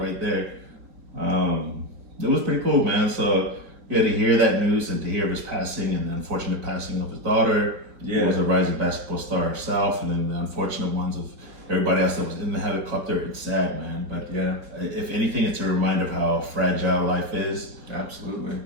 right there. It was pretty cool, man. So yeah, to hear that news and to hear of his passing and the unfortunate passing of his daughter, who was a rising basketball star herself, and then the unfortunate ones of everybody else that was in the helicopter. It's sad, man. But if anything, it's a reminder of how fragile life is. Absolutely.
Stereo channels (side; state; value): left; late; 4.3 ms